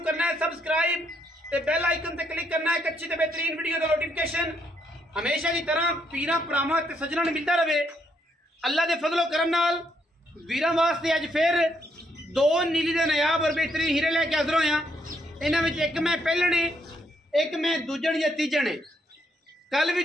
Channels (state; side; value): normal; both; correlation 0.74